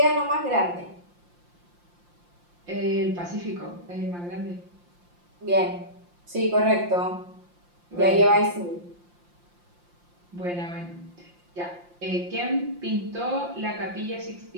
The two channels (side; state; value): left; late; 5.7 ms